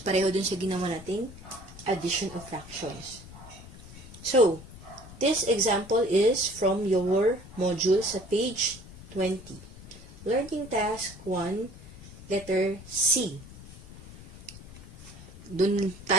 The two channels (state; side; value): noise; left; rumble, 17 dB below the sound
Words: pareho dun sa ginawa nating addition of fractions. So, this example is from your module sa page 20. Learning task 1, letter C. Dun